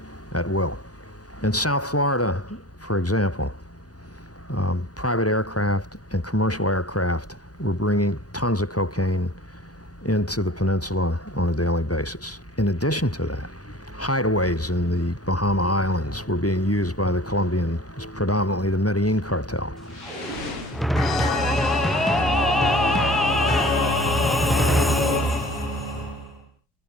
at will. In South Florida, for example, private aircraft and commercial aircraft were bringing tons of cocaine into the peninsula on a daily basis. In addition to that, hideaways in the Bahama Islands were being used by the Colombian, predominantly the Medellin cartel.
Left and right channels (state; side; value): normal; both; correlation 0.45